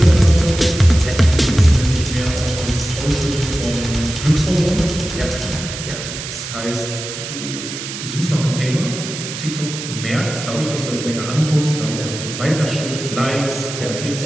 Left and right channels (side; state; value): right; noise; hiss, 8 dB below the sound